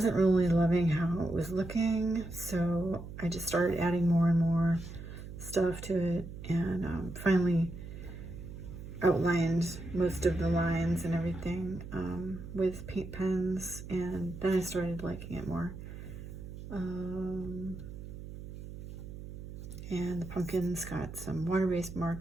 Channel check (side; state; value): right; noise; hum, 11 dB below the sound